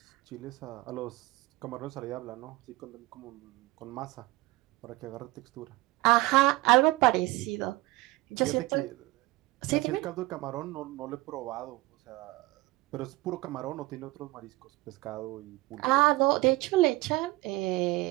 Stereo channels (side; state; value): left; quieter; 19.9 dB